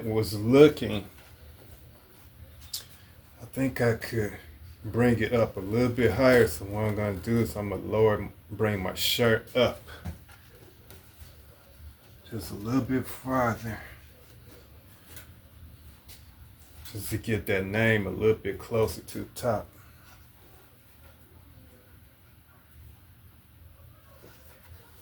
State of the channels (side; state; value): both; identical; correlation 1.00